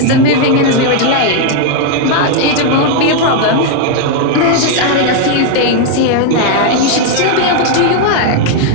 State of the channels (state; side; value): different; both; correlation 0.00